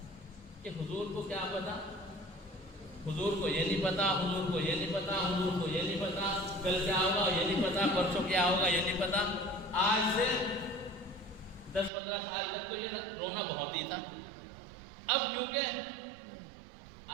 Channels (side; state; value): left; drops out; at 11.9 s